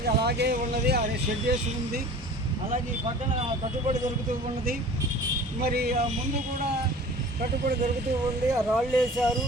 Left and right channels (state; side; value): normal; both; correlation 0.43